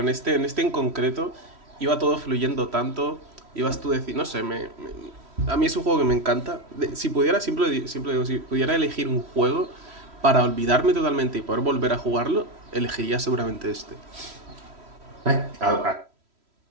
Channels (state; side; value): late; left; 3.1 ms